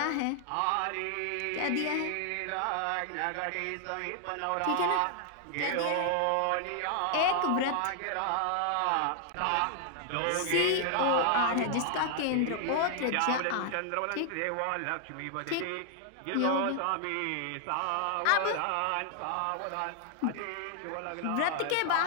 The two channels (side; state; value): both; different; correlation 0.00